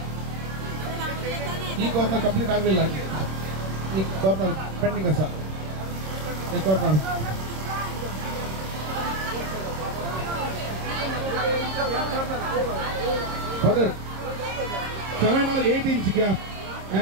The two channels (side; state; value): left; late; 26 ms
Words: ಈ ಕಾರ್ನರ್ ಕಂಪ್ಲೀಟ್ ಆಗಲಿಲ್ಲ ಈ ಕಾರ್ನರ್ ಪೆಂಡಿಂಗ್ ಅಸ ಈ corner father 7 or 8 inch gap